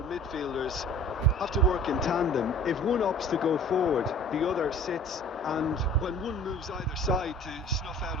midfielders have to work in tandem. If one opts to go forward, the other sits, and when one moves either side to snuff out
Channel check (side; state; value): both; normal; correlation 0.45